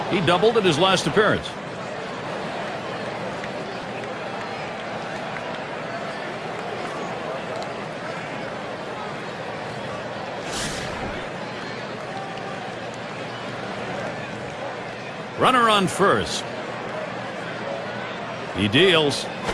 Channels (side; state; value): both; identical; correlation 1.00